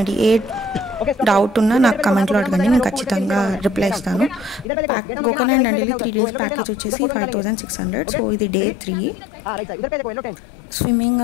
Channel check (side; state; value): right; drops out; at 4.7 s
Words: ఏ డౌట్ ఉన్నా నాకు కమెంట్లో అడగండి, నేను ఖచ్చితంగా రిప్లై ఇస్తాను. గోకర్ణ అండ్ డండేలి 3 days ప్యాకేజ్ వచ్చేసి 5600. సో ఇది డే 3. స్విమ్మింగ్